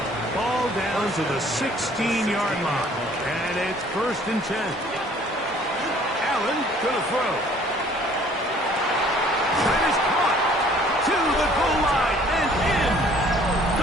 Ball down to the 16-yard line. And it's first and 10. Allen gonna throw. That is caught to the goal line and in.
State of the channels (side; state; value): both; normal; correlation 0.56